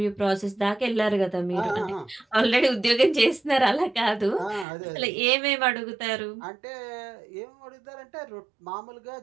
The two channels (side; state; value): left; drops out; at 4.7 s